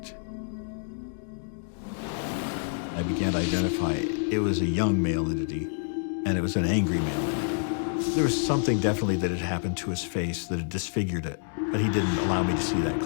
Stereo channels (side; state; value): right; silent; digital silence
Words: I began to identify it was a young male entity, and it was an angry male entity. There was something definitely that had happened to his face that had disfigured it, but he didn't allow me to see that